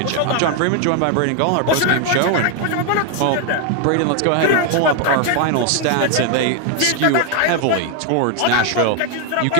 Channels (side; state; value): both; different; correlation 0.01